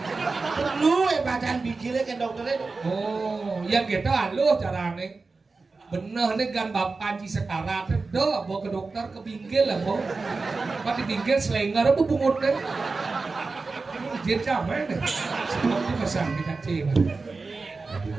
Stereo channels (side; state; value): left; quieter; 4.0 dB